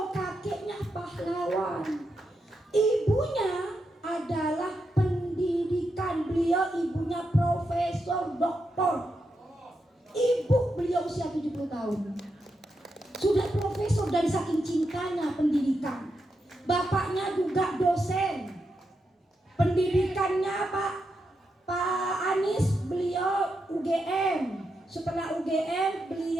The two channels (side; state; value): both; normal; correlation 0.85